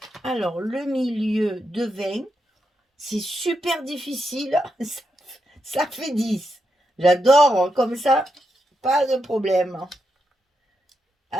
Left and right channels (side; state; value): both; normal; correlation 0.84